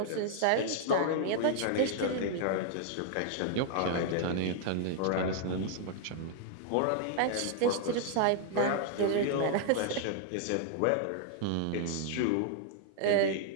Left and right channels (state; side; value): different; both; correlation 0.00